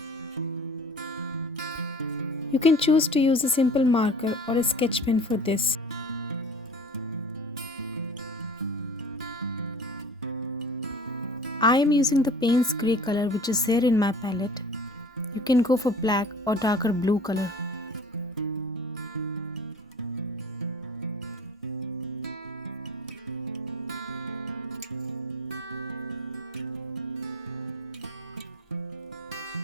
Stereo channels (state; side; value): normal; both; correlation 0.44